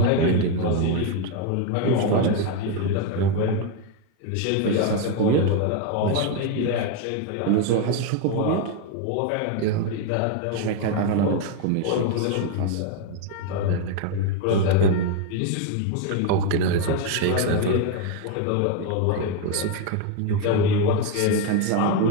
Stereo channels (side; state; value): both; different; correlation 0.01